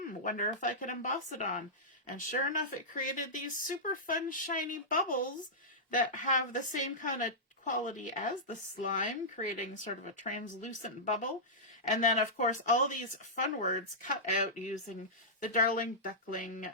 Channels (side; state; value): both; normal; correlation -0.13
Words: wonder if I could emboss it on. And sure enough, it created these super fun, shiny bubbles that have the same kind of quality as the slime, creating sort of a translucent bubble. And then, of course, all these fun words cut out using the Darling Duckling,